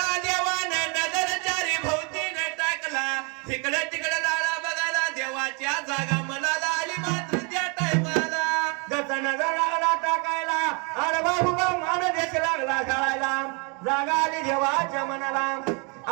देवानं नजर चारी भोवतीने टाकला तिकडे तिकडे लाळा बघायला देवाच्या जागा मनाला आली मात्र त्या टायमाला जसा नजर लागला टाकायला अरे बाबू मान देश लागला घालायला जागा आली देवाच्या मनाला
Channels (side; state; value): left; quieter; 33.5 dB